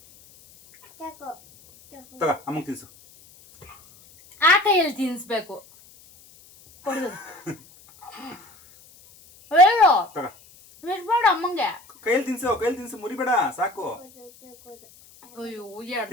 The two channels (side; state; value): left; noise; hiss, 25 dB below the sound